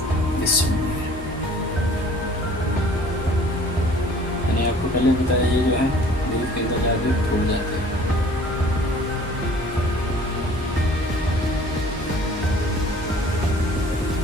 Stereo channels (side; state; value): both; normal; correlation 0.51